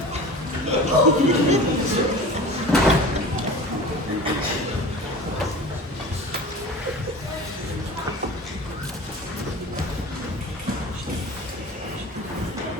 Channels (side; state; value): both; normal; correlation 0.37